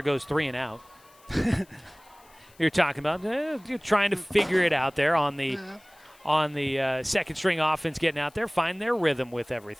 goes 3 and out. You're talking about you're trying to figure it out there on the second string offense, getting out there, find their rhythm with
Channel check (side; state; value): left; noise; hiss, 28 dB below the sound